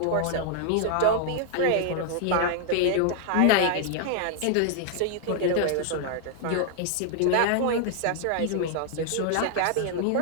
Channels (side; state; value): both; different; correlation 0.00